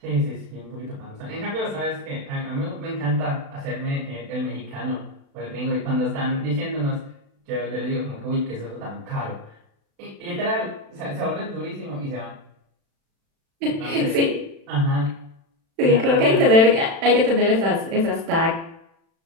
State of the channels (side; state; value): left; late; 36 ms